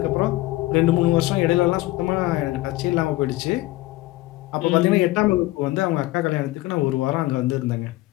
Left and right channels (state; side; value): quieter; right; 18.4 dB